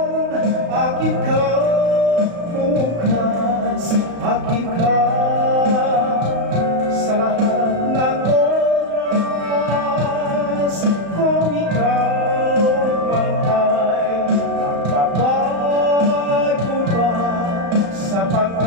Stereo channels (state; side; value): late; left; 35 ms